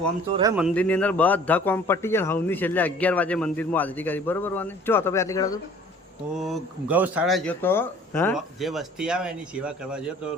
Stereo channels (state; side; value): normal; both; correlation 0.51